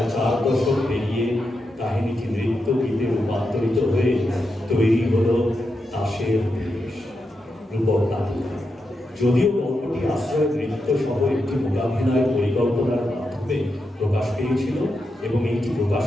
4 দশক পেরিয়ে কাহিনীটি নৃত্য গীতে রূপান্তরিত হয়ে তৈরি হলো তাসের দেশ রূপক নাটক। যদিও গল্পটি আশ্রয় নৃত্য সহ একটি মূলাভিনয় পরিকল্পনার মাধ্যমে প্রকাশ পেয়েছিল এবং এটি প্রকাশ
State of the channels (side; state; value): both; normal; correlation 0.86